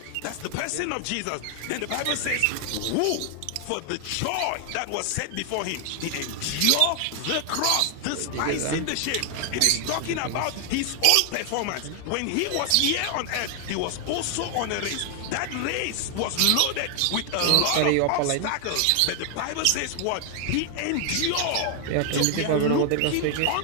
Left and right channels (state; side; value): different; both; correlation 0.00